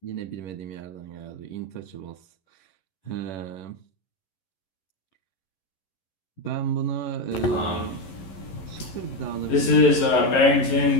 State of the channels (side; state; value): right; late; 11 ms